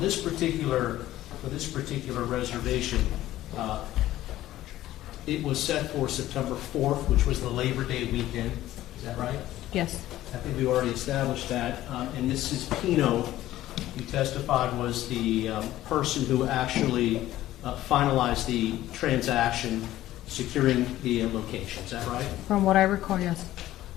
this particular reservation, it was set for September 4th, which was the Labor Day weekend. Is that right? Yes. I think we already established that. And Mrs. Pino, who testified, was the person who actually finalized the transaction, securing the location. Is that right? From what I recall, yes.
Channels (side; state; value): right; quieter; 14.6 dB